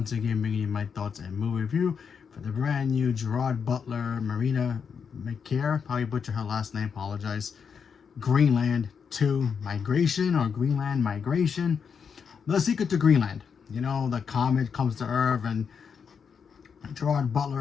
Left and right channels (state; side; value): quieter; right; 6.5 dB